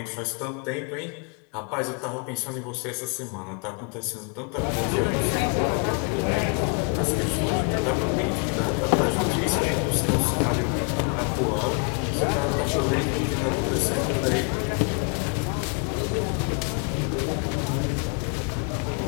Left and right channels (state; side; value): quieter; right; 38.3 dB